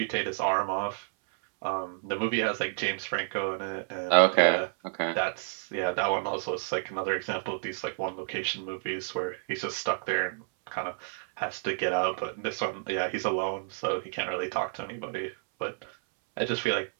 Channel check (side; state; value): left; silent; 58 dB below the other